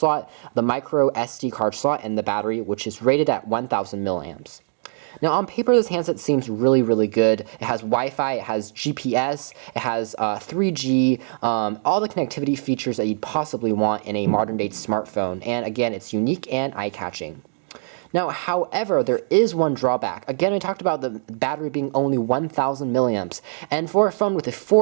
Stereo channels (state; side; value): silent; left; digital silence